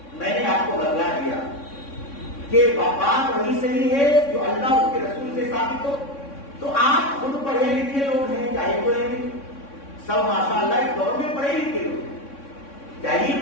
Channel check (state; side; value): late; right; 3.6 ms